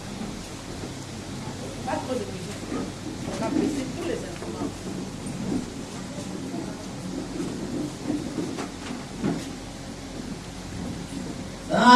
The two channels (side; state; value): both; identical; correlation 1.00